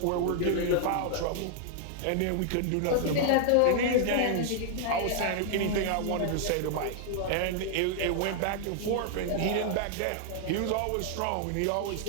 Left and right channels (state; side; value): different; both; correlation 0.00